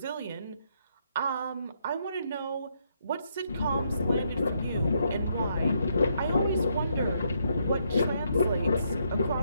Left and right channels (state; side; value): inverted; both; correlation -0.75